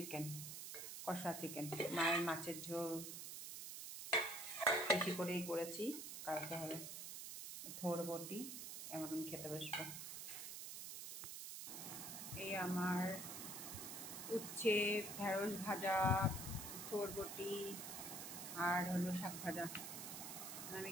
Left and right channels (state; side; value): noise; right; hiss, 7 dB below the sound